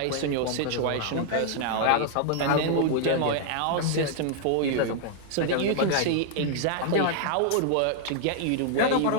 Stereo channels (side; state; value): both; different; correlation 0.00